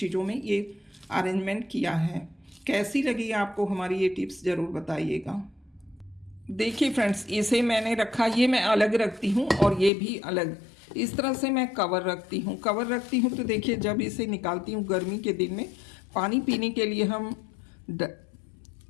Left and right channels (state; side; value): drops out; right; at 9.9 s